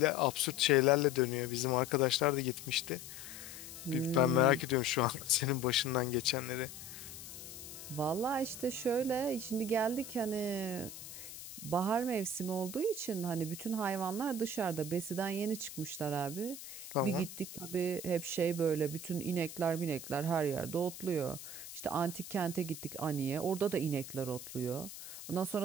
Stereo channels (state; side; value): noise; left; hiss, 12 dB below the sound